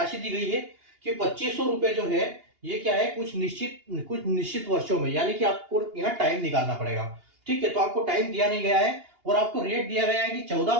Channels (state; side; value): late; left; 2.8 ms